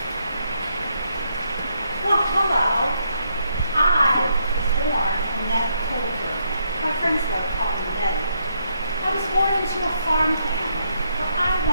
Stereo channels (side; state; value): both; inverted; correlation -0.76